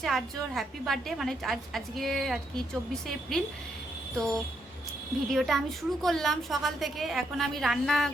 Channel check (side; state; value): both; normal; correlation 0.77